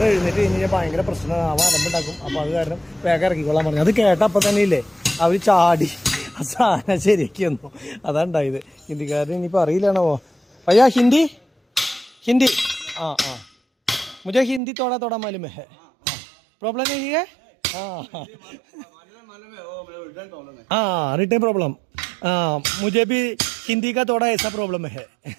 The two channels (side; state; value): left; drops out; at 14.6 s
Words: എഴുന്നേറ്റ് കഴിഞ്ഞാൽ ഭയങ്കര പ്രശ്നമാവാൻ അലമ്പുണ്ടാക്കും. അപ്പോൾ അത് കാരണം വേഗം ഇറക്കിക്കൊള്ളാൻ പറഞ്ഞു. അത് കേട്ടപ്പോൾ തന്നെ ഇല്ലേ അവർ ചാടി ആ സാധനം ശരിയാക്കി വന്നു. അതാണ് ഉണ്ടായത്. ഹിന്ദിക്കാരൻ ഇനിയിപ്പോൾ അറിയില്ലാണോ? ഭയ്യാ ഹിന്ദി मुझे हिंदी थोड़ा मालूम है. प्रॉब्लम नहीं है? Return problem. मुझे भी ഹിന്ദി കാ തോടാ ഏസാ പ്രോബ്ലം ഹേ.